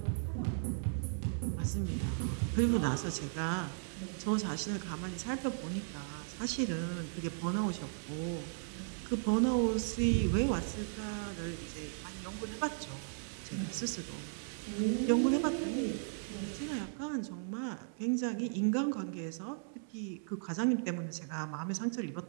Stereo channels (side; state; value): left; silent; digital silence